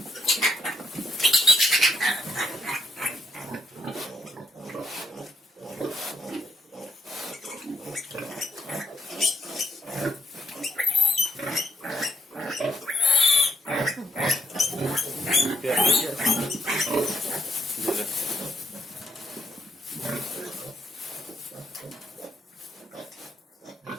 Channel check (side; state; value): both; normal; correlation 0.78